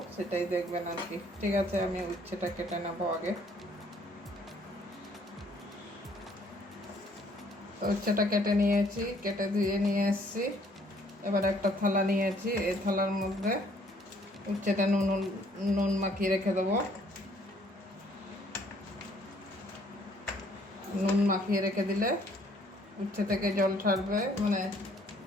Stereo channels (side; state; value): both; normal; correlation 0.62